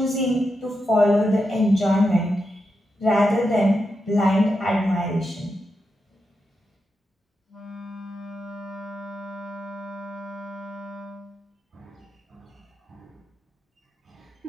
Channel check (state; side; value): normal; both; correlation 0.87